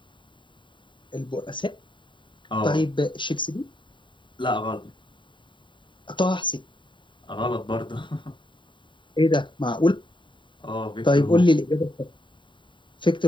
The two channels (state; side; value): late; right; 0.23 ms